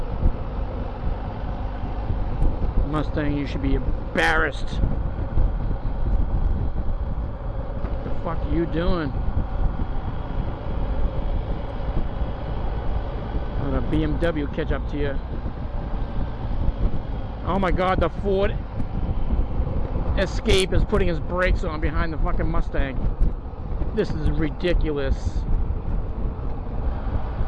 Mustang, you should be embarrassed. What the fuck are you doing? Let a BMW catch up to you. Oh my god, the Ford Escape is putting his brakes on behind the fucking Mustang. This is ridiculous.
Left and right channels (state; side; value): identical; both; correlation 1.00